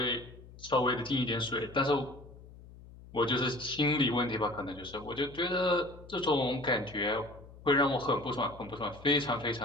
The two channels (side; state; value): left; noise; hum, 19 dB below the sound